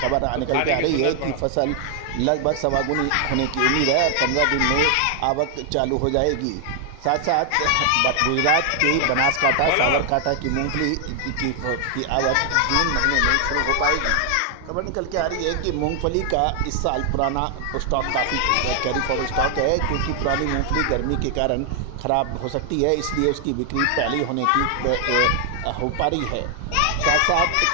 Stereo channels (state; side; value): different; both; correlation 0.00